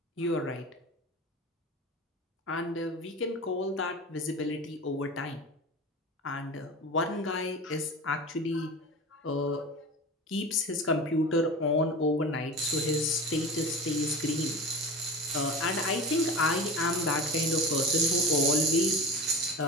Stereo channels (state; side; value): normal; both; correlation 0.31